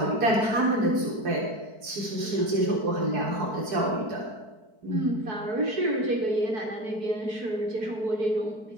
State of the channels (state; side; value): late; left; 4.7 ms